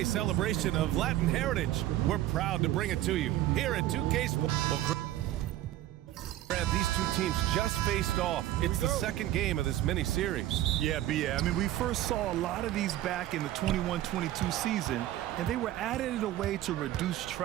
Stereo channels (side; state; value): left; quieter; 14.0 dB